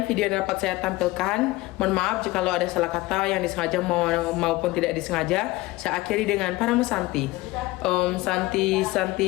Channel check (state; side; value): quieter; right; 19.7 dB